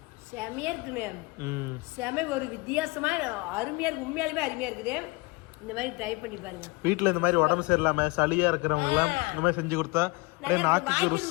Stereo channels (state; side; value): quieter; right; 25.6 dB